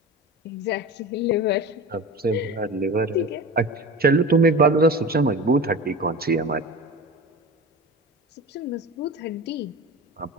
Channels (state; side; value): normal; both; correlation 0.32